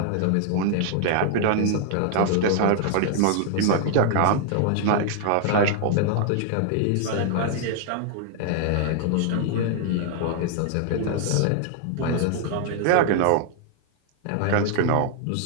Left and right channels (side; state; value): both; different; correlation 0.00